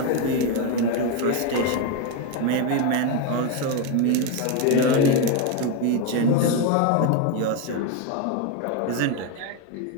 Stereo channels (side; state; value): both; different; correlation 0.02